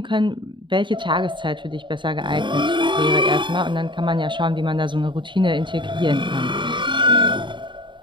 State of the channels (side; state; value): left; late; 0.23 ms